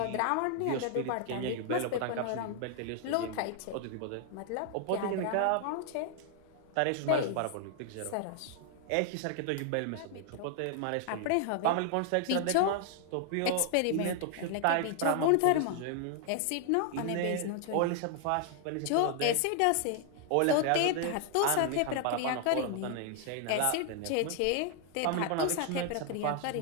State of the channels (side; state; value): both; different; correlation 0.00